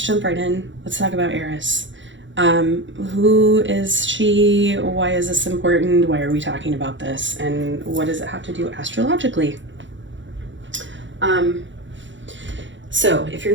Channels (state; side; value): late; left; 0.54 ms